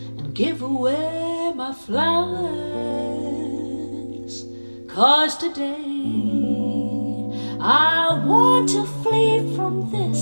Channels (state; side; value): inverted; both; correlation -1.00